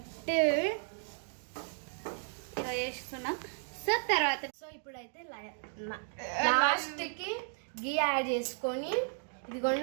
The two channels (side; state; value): left; silent; 55 dB below the other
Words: ఇలా చేస్తున్నాం. సో తర్వాత ఇప్పుడైతే లాస్ట్కి గీ యాడ్ చేసుకొని